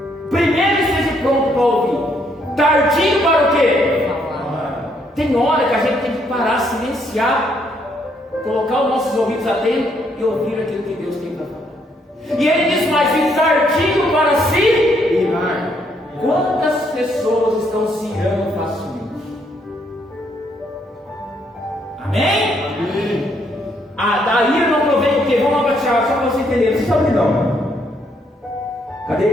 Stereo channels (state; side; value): normal; both; correlation 0.72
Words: Primeiro esteja pronto para ouvir. Tardio para o quê? Tem hora que a gente tem que parar, silenciar, colocar os nossos ouvidos atentos e ouvir aquilo que Deus tem para falar. E ele diz mais: e tardio para se irar. Quantas pessoas estão se irando facilmente? Amém? Amém. Da ira não provém o quê? Vamos lá para Tiago, só para você entender. Vocês estão não? Cadê?